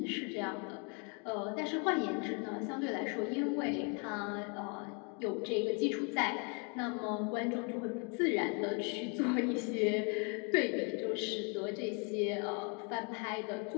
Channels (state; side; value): quieter; right; 35.8 dB